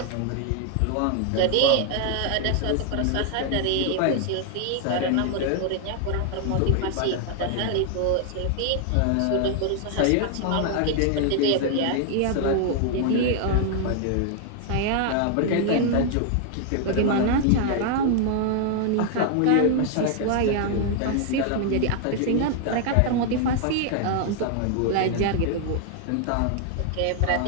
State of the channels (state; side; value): different; both; correlation 0.00